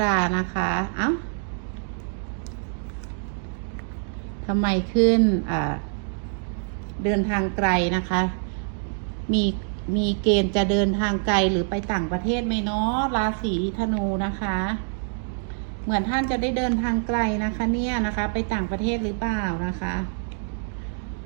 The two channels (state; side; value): silent; left; digital silence